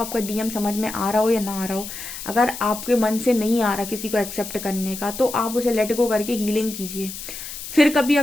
आपका डीएम समझ में आ रहा हो या ना आ रहा हो, अगर आपके मन से नहीं आ रहा किसी को एक्सेप्ट करने का, तो आप उसे लेट गो करके हीलिंग कीजिए। फिर कभी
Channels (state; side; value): noise; left; hiss, 10 dB below the sound